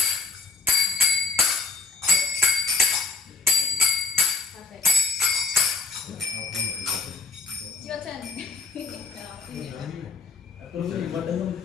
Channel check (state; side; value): quieter; right; 4.0 dB